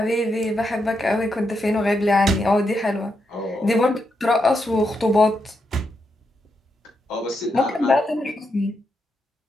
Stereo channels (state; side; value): normal; both; correlation 0.82